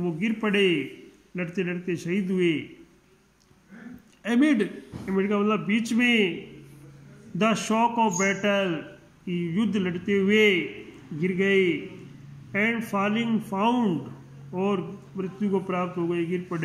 गिर पड़े, लड़ते लड़ते शहीद हुए. एमिड का मतलब बीच में. द शॉक ऑफ बैटल, युद्ध लड़ते हुए गिर गए. एंड फॉलिंग फाउंड, और मृत्यु को प्राप्त हो गए, गिर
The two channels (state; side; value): identical; both; correlation 1.00